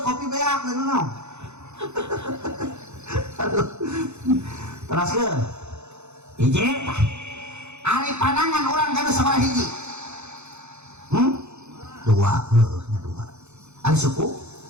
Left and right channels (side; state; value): left; late; 0.82 ms